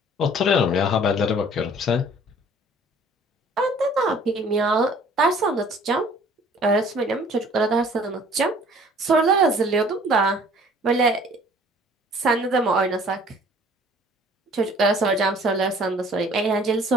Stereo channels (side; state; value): both; normal; correlation 0.53